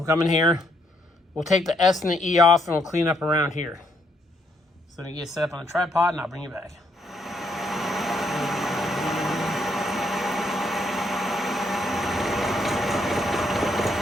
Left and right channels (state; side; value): normal; both; correlation 0.73